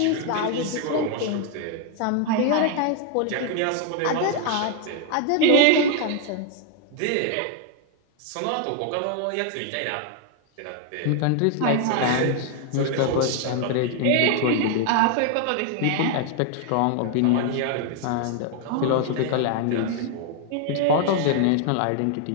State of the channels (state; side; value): different; both; correlation 0.00